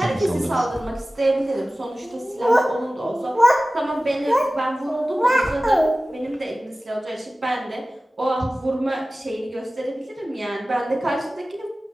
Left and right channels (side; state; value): both; normal; correlation 0.96